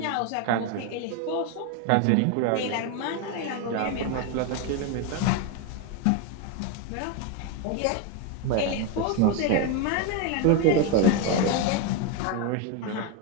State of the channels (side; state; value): both; different; correlation 0.02